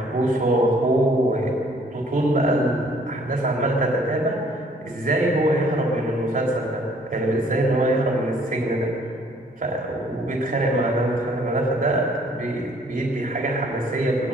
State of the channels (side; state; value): both; normal; correlation 0.60